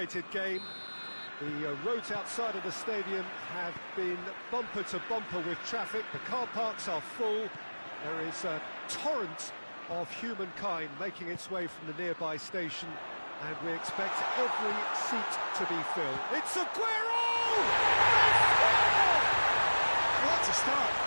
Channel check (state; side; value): inverted; both; correlation -1.00